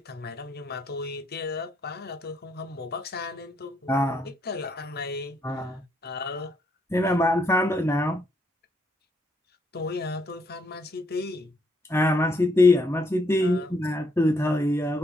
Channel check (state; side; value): normal; both; correlation 0.73